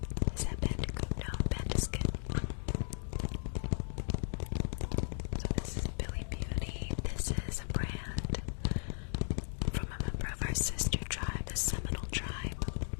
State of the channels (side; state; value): right; silent; digital silence